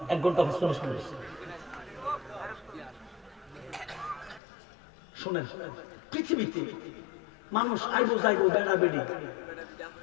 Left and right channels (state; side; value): drops out; right; at 4.4 s